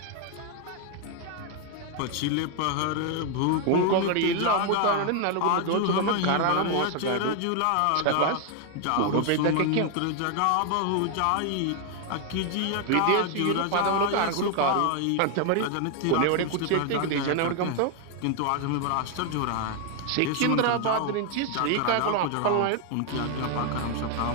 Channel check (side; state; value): both; different; correlation 0.00